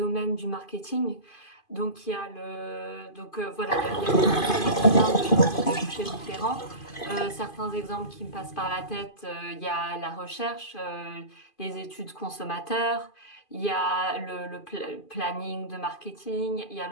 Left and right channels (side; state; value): right; late; 2.5 ms